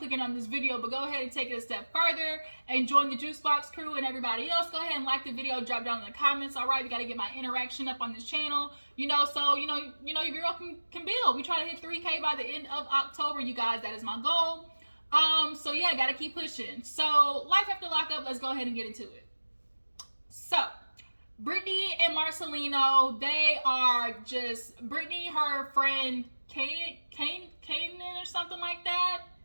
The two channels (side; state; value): both; inverted; correlation -1.00